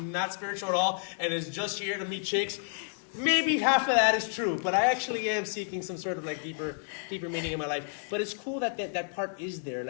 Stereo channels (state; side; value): silent; right; digital silence